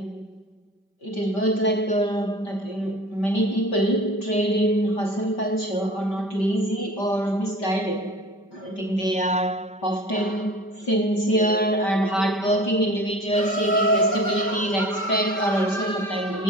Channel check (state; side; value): late; right; 5.1 ms